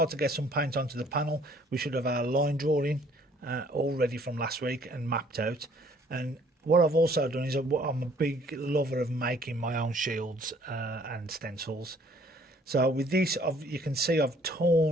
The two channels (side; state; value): both; normal; correlation 0.59